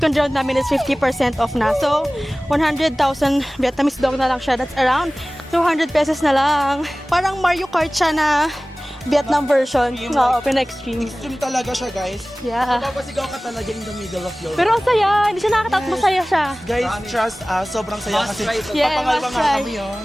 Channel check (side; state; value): both; normal; correlation 0.98